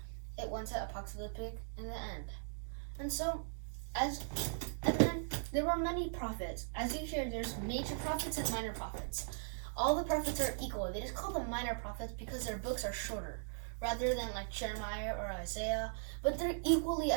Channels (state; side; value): silent; left; digital silence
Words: it went to apocalyptic in the end. And so, and then there were many prophets. As you hear, there's major prophets and minor prophets. All the prophets are equal. They just call them minor prophets because their books are shorter, rather than like Jeremiah or Isaiah. But they're equally